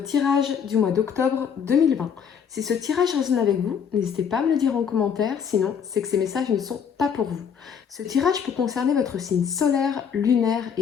du mois d'octobre 2020. Si ce tirage résonne avec vous, n'hésitez pas à me le dire en commentaire, sinon c'est que ces messages ne sont pas pour vous. Ce tirage peut concerner votre signe solaire, lunaire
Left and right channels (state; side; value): quieter; right; 7.2 dB